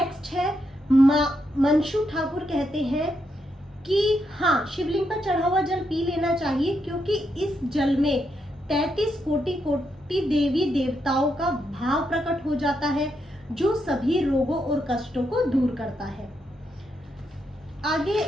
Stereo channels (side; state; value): both; normal; correlation 0.81